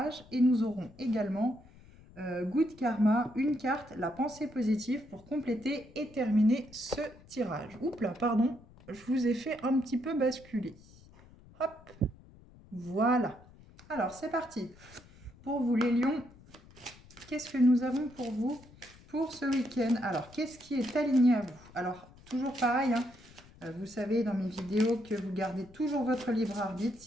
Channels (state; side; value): noise; left; rumble, 23 dB below the sound